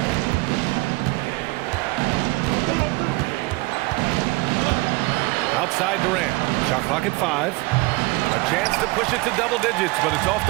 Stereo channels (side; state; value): left; quieter; 23.4 dB